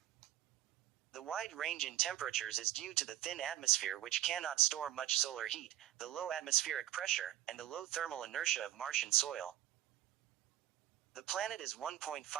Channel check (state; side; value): quieter; left; 13.5 dB